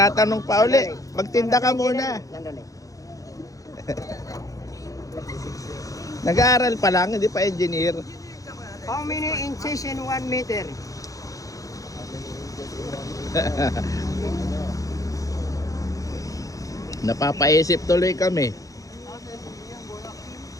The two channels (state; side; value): late; right; 0.17 ms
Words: pa uli. Magtinda ka muna. Sandali. Nag-aaral pa lang, hindi pa engineer. How many inches in 1 meter? Napapaisip tuloy kami.